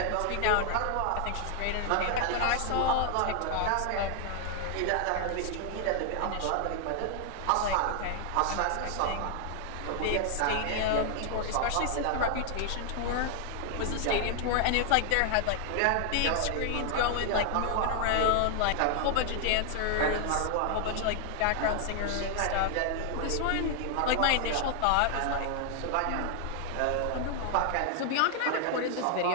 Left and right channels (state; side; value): different; both; correlation 0.00